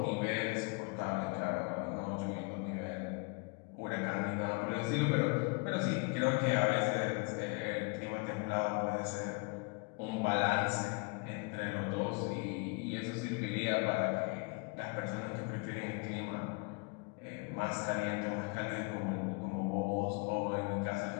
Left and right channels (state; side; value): quieter; right; 30.6 dB